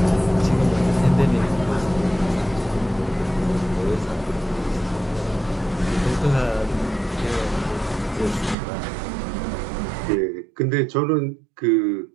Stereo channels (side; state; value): left; drops out; at 8.6 s